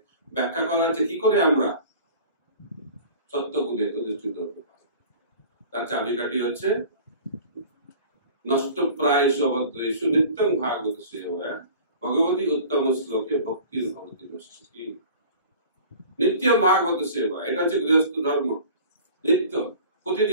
ব্যাখ্যা করা হচ্ছে কি করে আমরা সত্যগুণে অধিষ্ঠিত হতে পারি। তার চাবিকাঠি হচ্ছে নষ্ট প্রায়শু অভদ্রেষু নিত্যং ভাগবত সেবা ভগবতী উত্তম শ্লোকে ভক্তির ভবতি নষ্টি। নিত্যম ভাগবত সেবা, এটা হচ্ছে গৃহস্থ ধর্ম। নিত্য,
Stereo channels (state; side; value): inverted; both; correlation -0.43